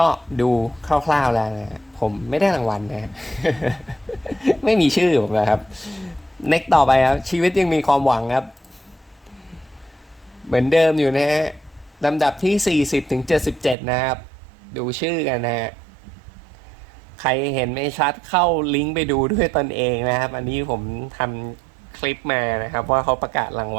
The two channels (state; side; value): drops out; left; at 13.8 s